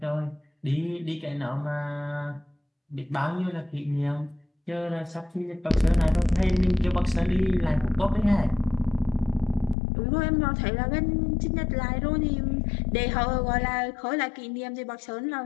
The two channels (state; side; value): drops out; right; at 9.8 s